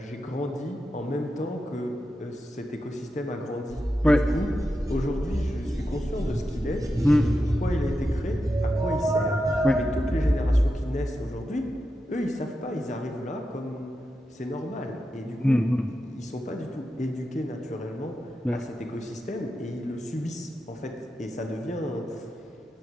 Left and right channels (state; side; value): normal; both; correlation 0.89